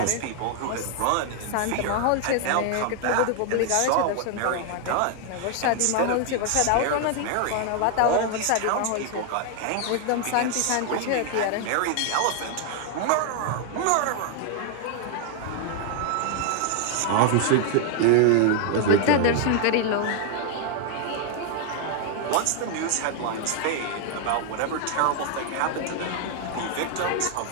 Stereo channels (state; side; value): different; both; correlation 0.00